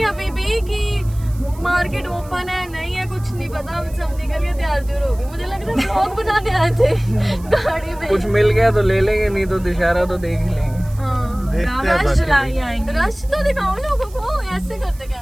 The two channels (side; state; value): right; noise; hiss, 23 dB below the sound